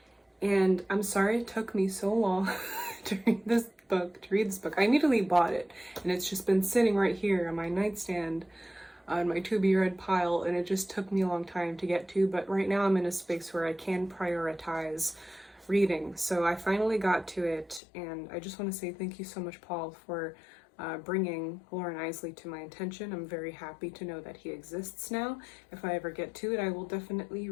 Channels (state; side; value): drops out; right; at 17.8 s